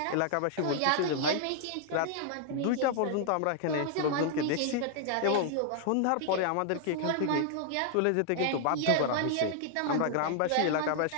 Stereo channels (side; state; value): both; different; correlation 0.00